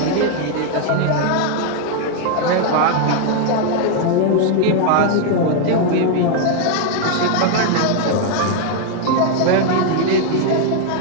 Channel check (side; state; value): both; different; correlation 0.00